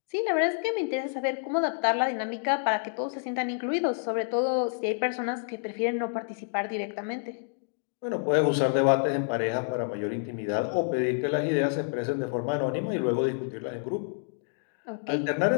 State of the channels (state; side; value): silent; right; digital silence